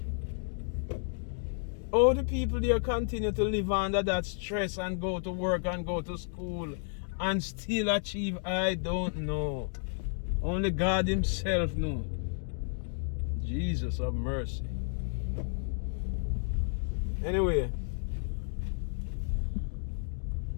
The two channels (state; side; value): silent; right; digital silence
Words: All the people there continue to live under that stress and go to work and go to school and still achieve, I don't know. Only God himself knows. Jesus have mercy. Anyway,